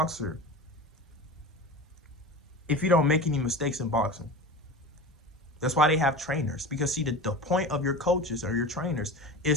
if you don't make any mistakes in boxing? That's why they have trainers. Because see, the point of your coaches or your trainers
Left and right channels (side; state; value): both; normal; correlation 0.31